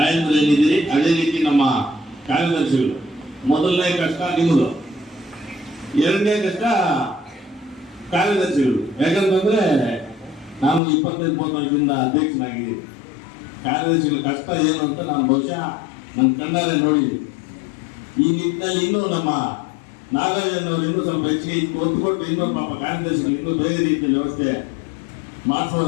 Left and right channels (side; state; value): right; drops out; at 10.8 s